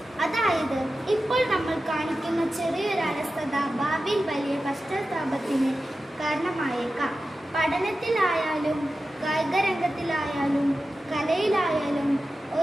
അതായത് ഇപ്പോൾ നമ്മൾ കാണിക്കുന്ന ചെറിയൊരു അലസത ഭാവിയിൽ വലിയ പശ്ചാത്താപത്തിന് കാരണമായേക്കാം. പഠനത്തിലായാലും കായികരംഗത്തിലായാലും കലയിലായാലും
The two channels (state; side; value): normal; both; correlation 0.93